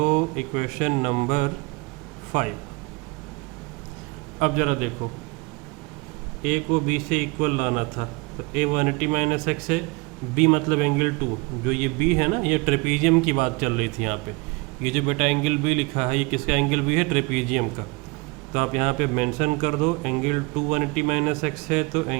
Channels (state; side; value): quieter; left; 26.9 dB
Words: इक्वेशन नंबर 5। अब ज़रा देखो, ए को बी से इक्वल लाना था, तो ए 180 माइनस एक्स है, बी मतलब एंगल 2, जो ये बी है ना, ये ट्रेपीजियम की बात चल रही थी यहाँ पे। ये जो बेटा एंगल बी लिखा है, ये किसका एंगल बी है, ट्रेपीजियम का। तो आप यहाँ पे मेंशन कर दो एंगल 2 180 माइनस एक्स है, तो